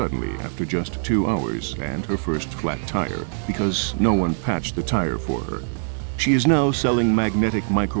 after just 2 hours and her first flat tire, because no one patched the tire for her. She is now selling magnetic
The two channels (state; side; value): silent; left; 64 dB below the other